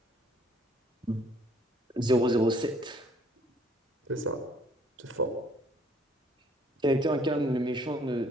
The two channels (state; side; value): normal; both; correlation 0.61